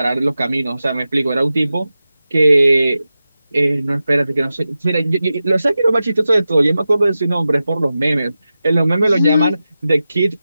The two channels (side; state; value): both; inverted; correlation -0.93